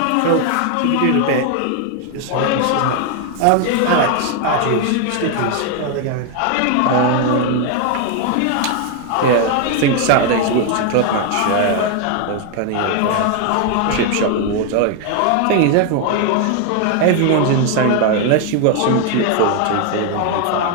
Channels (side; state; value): both; different; correlation 0.01